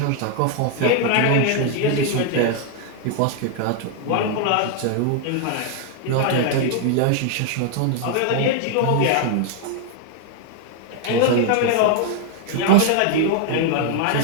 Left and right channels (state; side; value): different; both; correlation 0.00